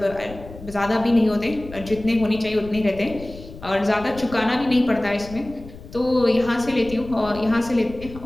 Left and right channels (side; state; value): left; noise; rumble, 15 dB below the sound